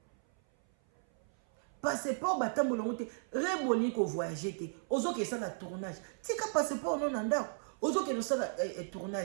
Passeport batambola ngote reboni ko voyager te ozo ke ça na tournage tika passeport non ndako ozo ke no ça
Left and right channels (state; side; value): silent; left; 54 dB below the other